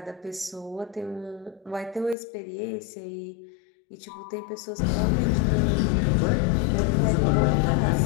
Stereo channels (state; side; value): drops out; right; at 2.1 s